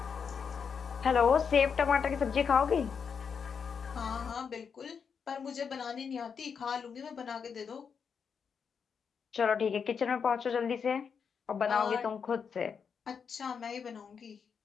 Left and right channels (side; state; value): right; quieter; 6.4 dB